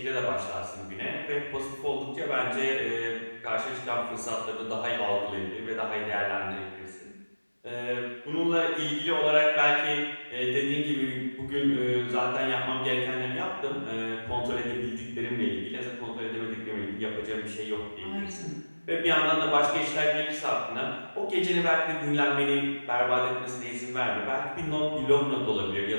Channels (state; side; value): inverted; both; correlation -1.00